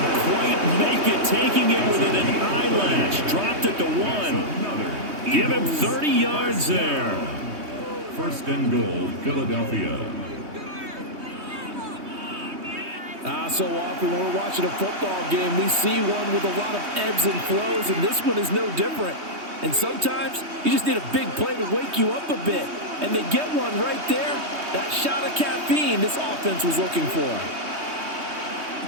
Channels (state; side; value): late; left; 3.2 ms